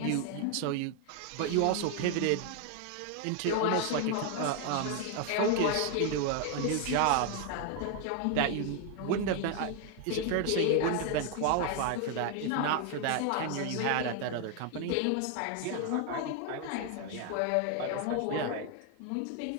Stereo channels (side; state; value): both; different; correlation 0.01